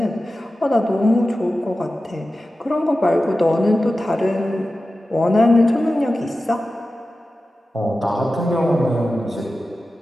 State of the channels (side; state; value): both; normal; correlation 0.94